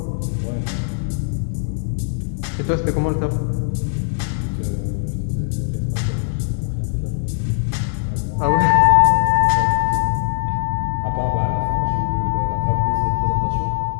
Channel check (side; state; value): right; silent; digital silence